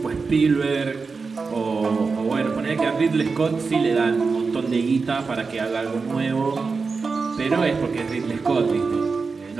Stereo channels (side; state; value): left; quieter; 4.6 dB